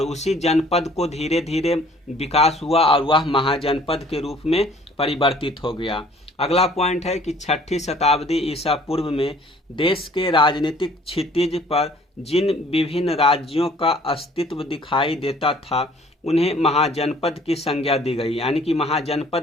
उसी जनपद को धीरे धीरे विकास हुआ और वह महाजनपद के रूप में परिवर्तित हो गया। अगला पॉइंट है कि 6ठी शताब्दी ईसा पूर्व में देश के राजनीतिक क्षितिज पर जिन विभिन्न राज्यों का अस्तित्व दिखाई देता था, उन्हें महाजनपद की संज्ञा दी गई। यानी कि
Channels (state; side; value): normal; both; correlation 0.55